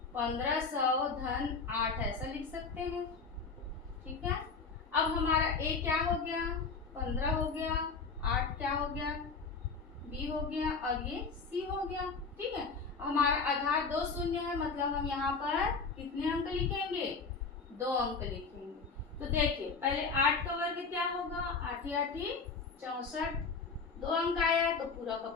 1500 धन 8 ऐसा लिख सकते हैं। ठीक है, अब हमारा ए क्या हो गया, 15 हो गया, 8 क्या हो गया, बी हो गया और ये सी हो गया। ठीक है, हमारा आधार 2 शून्य है, मतलब हम यहाँ पर कितने अंक लिखेंगे, 2 अंक लिखेंगे। तो देखिए पहले 8 का वर्ग क्या होगा, 8 8 64, 2 अंक आया तो पूरा का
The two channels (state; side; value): quieter; right; 4.8 dB